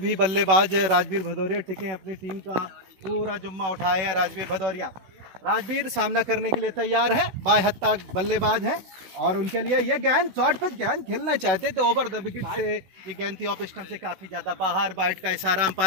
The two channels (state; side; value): late; left; 16 ms